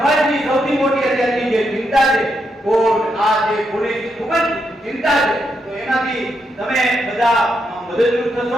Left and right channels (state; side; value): normal; both; correlation 0.81